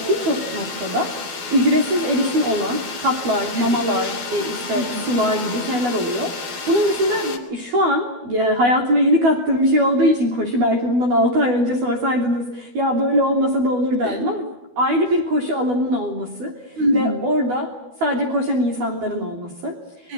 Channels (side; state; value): left; late; 12 ms